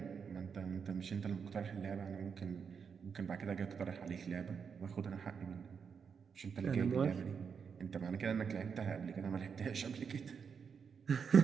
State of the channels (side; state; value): left; quieter; 6.4 dB